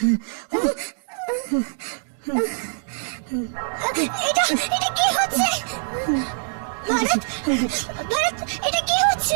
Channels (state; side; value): silent; left; digital silence